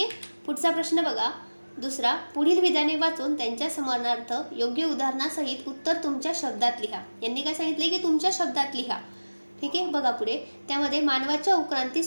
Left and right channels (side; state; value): both; inverted; correlation -1.00